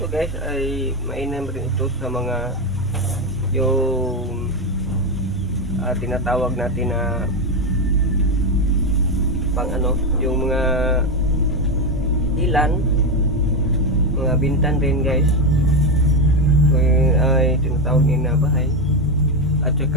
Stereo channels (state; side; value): normal; both; correlation 0.10